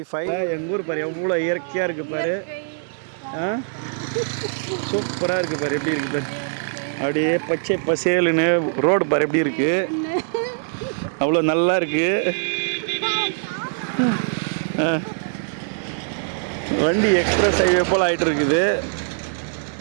எங்கள் ஊர் பாரு எவ்வளோ இயற்கையாக இருக்குது பாரு. சூப்பராக இருக்குது பாரு, எப்படி இருக்குது பாரு. அப்படியே பச்சை பசேலுன்னு ரோடு பாரு எப்படி இருக்குது, அவ்வளோ நல்லா இருக்குது. வண்டி எக்ஸ்பிரஸ் ஹைவே போல் ஆகிட்டு இருக்குது.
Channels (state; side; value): silent; left; digital silence